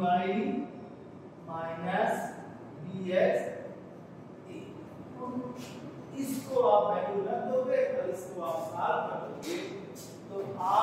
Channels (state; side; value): identical; both; correlation 1.00